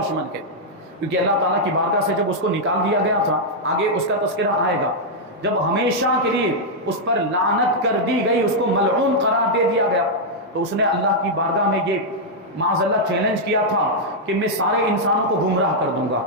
ہے، کیونکہ اللہ تعالیٰ کی بارگاہ سے جب اس کو نکال دیا گیا تھا، آگے اس کا تذکرہ آئے گا، جب ہمیشہ کے لیے اس پر لعنت کر دی گئی، اس کو ملعون قرار دے دیا گیا، تو اس نے اللہ کی بارگاہ میں یہ معاذ اللہ چیلنج کیا تھا کہ میں سارے انسانوں کو گمراہ کر دوں گا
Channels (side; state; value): both; normal; correlation -0.04